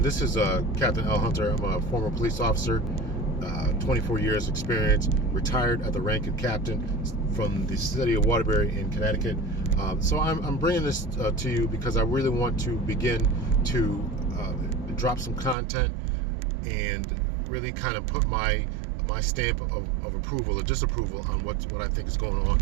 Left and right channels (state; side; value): drops out; left; at 15.6 s